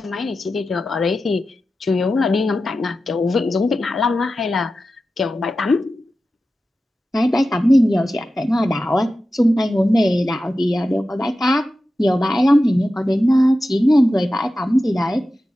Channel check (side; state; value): both; normal; correlation 0.93